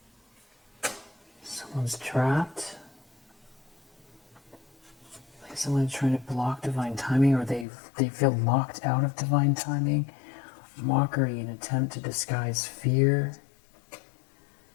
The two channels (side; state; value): right; drops out; at 7.7 s